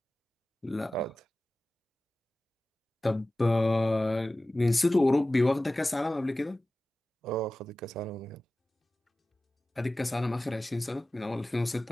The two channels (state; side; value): normal; both; correlation 0.96